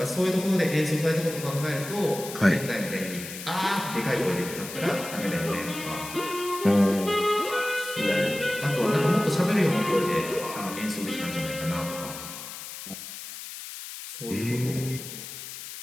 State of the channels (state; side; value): noise; left; hiss, 10 dB below the sound